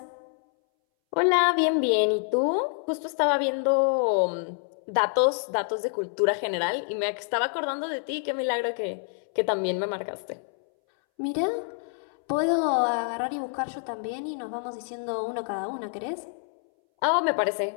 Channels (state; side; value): silent; right; 60 dB below the other